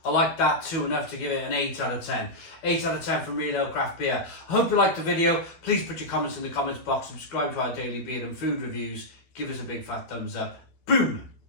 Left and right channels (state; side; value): late; right; 12 ms